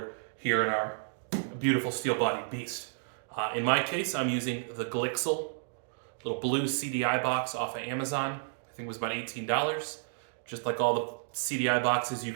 here in our beautiful steel-bodied beast. In my case, I'm using the Glixel little blue CDI box off of Amazon. I think it was about $18. Just like all the CDI boxes you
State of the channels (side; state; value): left; silent; digital silence